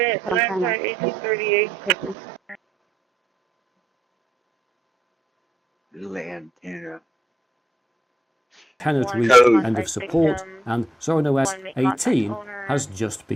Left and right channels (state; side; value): normal; both; correlation 0.83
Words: some kind of 1838. Little antenna. Cannot reach end of support, and ZoranOS 18 has just